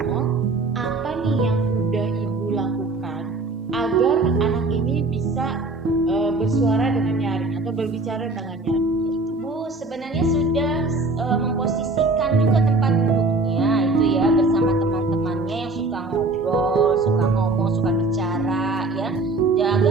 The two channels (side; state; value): left; quieter; 3.2 dB